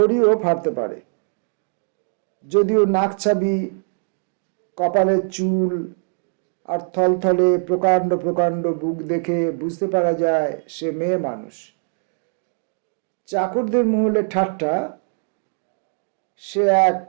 ফাটতে পারে। যদিও নাকছাবি, কপালের চুল আর থলথলে প্রকাণ্ড প্রকাণ্ড বুক দেখে বুঝতে পারা যায় সে মেয়ে মানুষ। চাকরদের মহলে ঠাট্টা, সে এক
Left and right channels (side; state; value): left; silent; digital silence